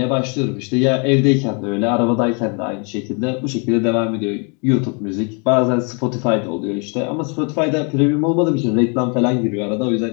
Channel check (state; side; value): quieter; right; 36.1 dB